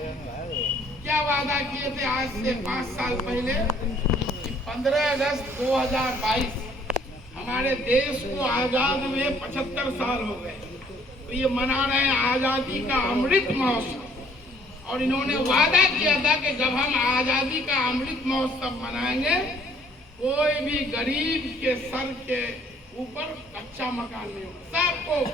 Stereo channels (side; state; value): both; normal; correlation 0.60